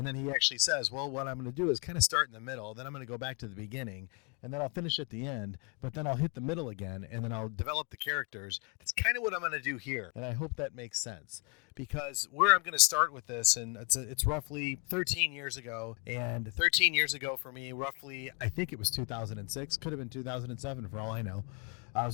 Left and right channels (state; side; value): quieter; right; 31.2 dB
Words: then he actually says, well, what I'm going to do is kind of start in the middle, then I'm going to go back to the beginning, and then I'll finish at the end, but then I'll hit the middle again, and then I'll develop the characters. That's kind of what I'm going to do here, and I hope that makes sense. Because where I'm going to start with this, and it's roughly 13 years ago, and 13 years ago for me, roughly, I think it was 2006, could have been 2007 for all I know. I